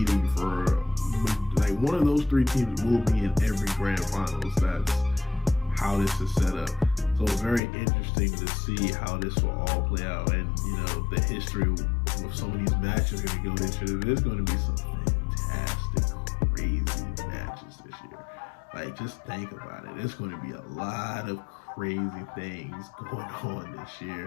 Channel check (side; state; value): right; drops out; at 7.6 s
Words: for, like, one of those 3 teams will be in every grand finals. That's how this is set up. So it's very interesting to see how this will all play out, and the history with some of these matches are going to go this year. There's going to be some fantastic, crazy matches this year. Like, just think about it. There's going to be a lot of crazy things going on this